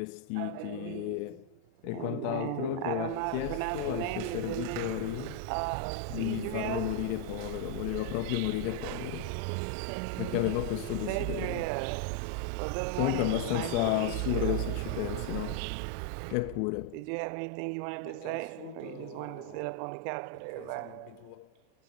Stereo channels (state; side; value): different; both; correlation 0.00